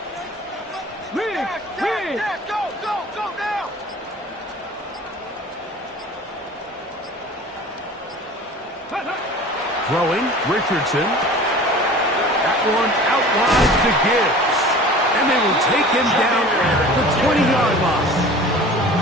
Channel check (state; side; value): normal; both; correlation 0.41